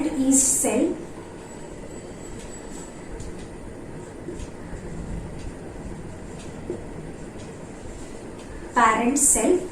yeast cell. Parent cell.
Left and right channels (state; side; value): identical; both; correlation 1.00